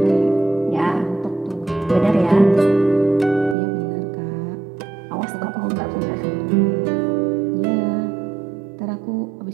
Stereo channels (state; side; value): drops out; left; at 3.6 s